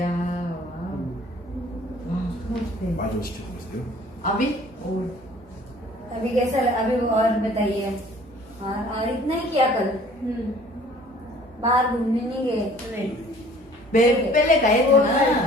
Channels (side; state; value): both; normal; correlation 0.52